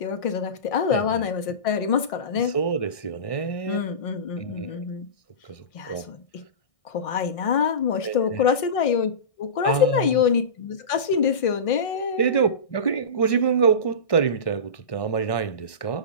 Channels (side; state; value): right; late; 1.6 ms